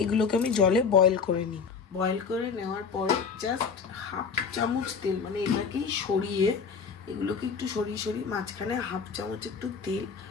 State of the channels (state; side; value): quieter; right; 5.8 dB